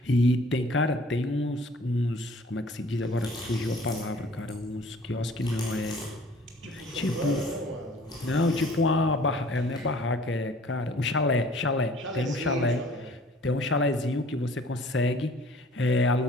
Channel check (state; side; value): normal; both; correlation 0.52